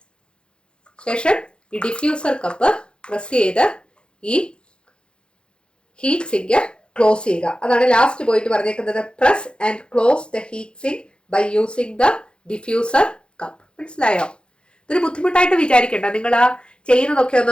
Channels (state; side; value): late; right; 0.054 ms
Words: ശേഷം ഈ ഡിഫ്യൂസർ കപ്പ് പ്രസ് ചെയ്ത് ഈ ഹീറ്റ് സിങ്ക് ക്ലോസ് ചെയ്യുക. അതാണ് ലാസ്റ്റ് പോയിട്ട് പറഞ്ഞേക്കുന്നത്. Press and close the heat sink by using the diffuser cup. മനസ്സിലായോ? ഇതൊരു ബുദ്ധിമുട്ടായിട്ട് വിചാരിക്കേണ്ട, നിങ്ങൾ ആ ചെയ്യുന്നതൊക്കെ